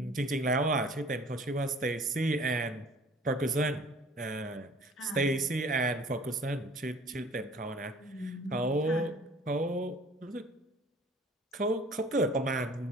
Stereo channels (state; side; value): normal; both; correlation 0.50